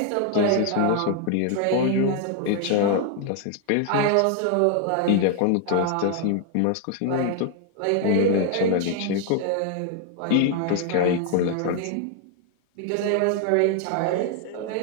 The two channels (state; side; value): different; both; correlation 0.00